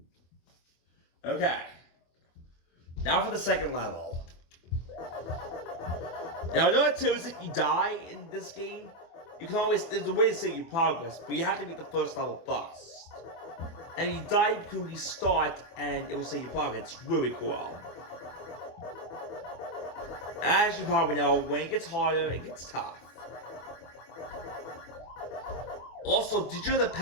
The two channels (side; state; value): right; late; 24 ms